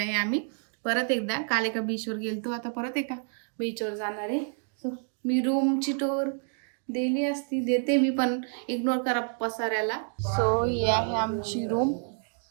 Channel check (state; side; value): silent; left; 59 dB below the other